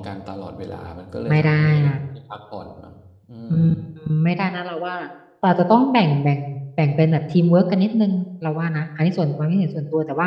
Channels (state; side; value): identical; both; correlation 1.00